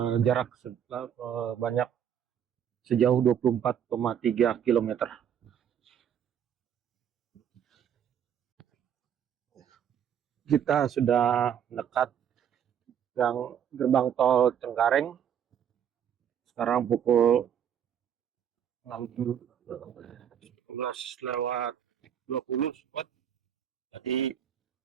jarak banyak sejauh 24,3 km. Kita sudah dekat gerbang tol Cengkareng. Sekarang pukul 16:20. Jadi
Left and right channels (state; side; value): quieter; left; 9.1 dB